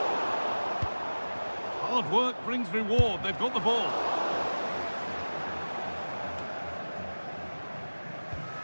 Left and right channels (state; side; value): inverted; both; correlation -1.00